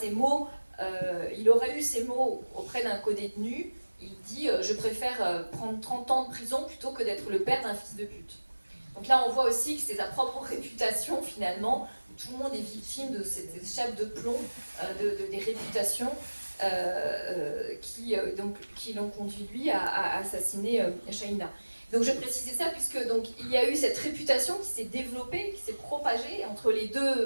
eu ces mots auprès d'un codétenu. Il dit je préfère prendre 30 ans de prison plutôt que d'être le père d'un fils de pute. Donc là on voit aussi que c'est sa propre réputation finalement, où tout le monde est victime de cette chape de plomb, des réputations qui l'ont conduit lui à assassiner Shaina. Donc je précisais ça puisque donc, il y a eu cette réputation qui s'est développée, qui s'est propagée entre les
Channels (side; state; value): both; inverted; correlation -1.00